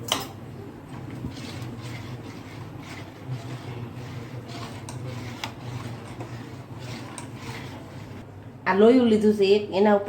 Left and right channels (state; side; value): identical; both; correlation 1.00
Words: આ લોયું લીધું છે એક, એના